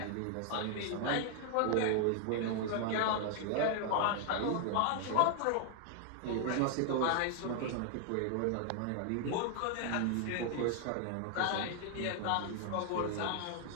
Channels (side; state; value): both; different; correlation 0.00